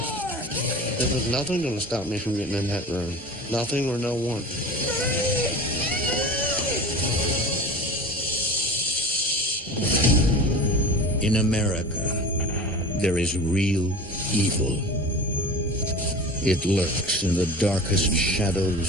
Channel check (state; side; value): normal; both; correlation 0.35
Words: There was nothing going to stop me from getting in that room. Nothing or no one. In America, there is real evil. It lurks in the darkest